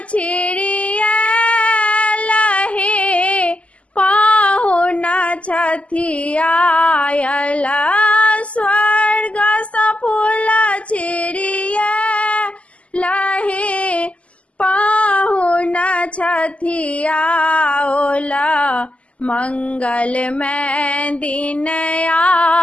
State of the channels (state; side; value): late; right; 0.063 ms